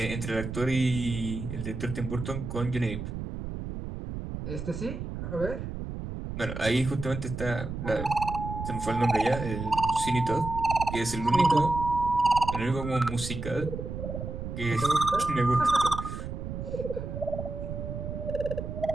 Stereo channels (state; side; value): noise; right; rumble, 6 dB below the sound